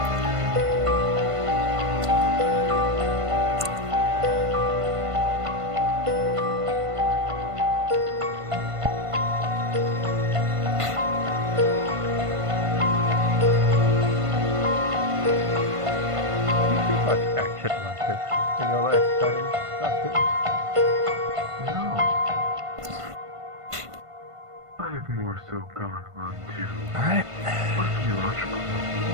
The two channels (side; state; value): left; late; 1.5 ms